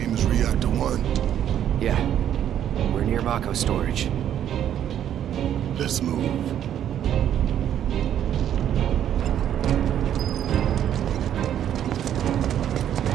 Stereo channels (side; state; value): left; quieter; 10.3 dB